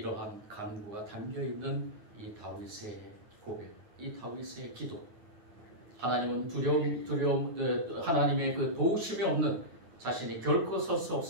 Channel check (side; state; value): left; late; 9.5 ms